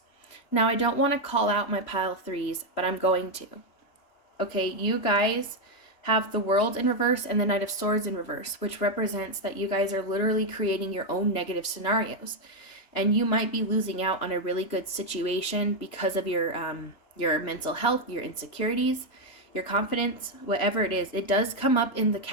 Now, I don't want to call out my pile 3s, but I'm going to. Okay, you guys have the World in reverse and the Knight of Swords in reverse, which represents that you guys are literally creating your own negative scenarios. And you might be losing out on a really good situation because of your mental health, your insecurities, your confidence, whatever it is. It does come up in the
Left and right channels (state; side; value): late; right; 3.0 ms